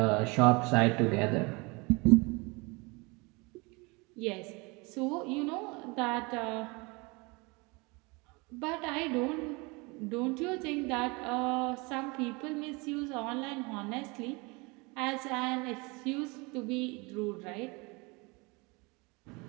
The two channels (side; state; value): left; quieter; 27.2 dB